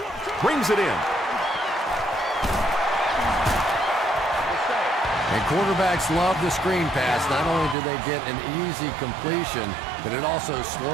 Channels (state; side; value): drops out; left; at 7.8 s